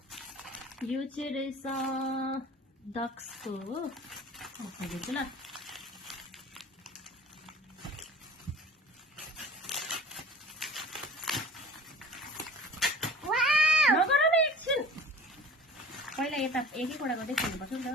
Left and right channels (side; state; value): both; normal; correlation 0.45